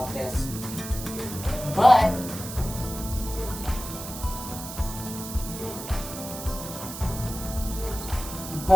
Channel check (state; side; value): noise; right; hiss, 10 dB below the sound